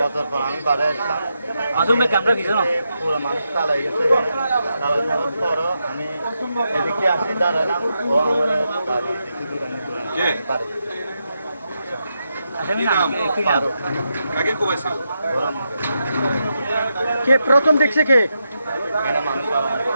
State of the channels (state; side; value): inverted; both; correlation -0.85